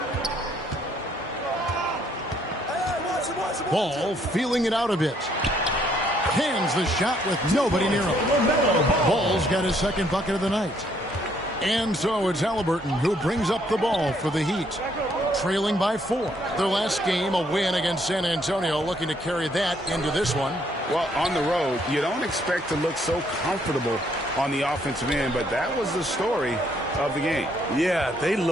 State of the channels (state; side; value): normal; both; correlation 0.68